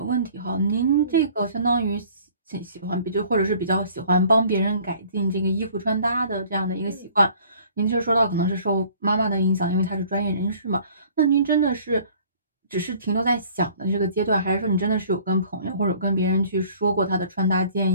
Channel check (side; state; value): both; inverted; correlation -0.53